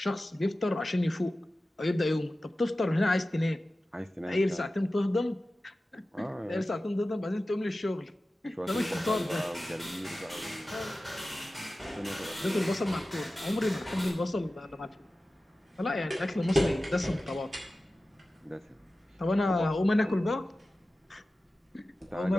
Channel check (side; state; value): both; normal; correlation 0.95